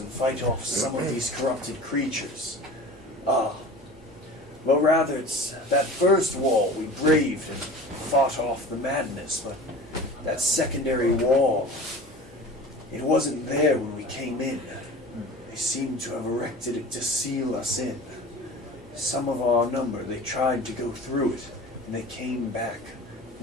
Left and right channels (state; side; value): normal; both; correlation 0.38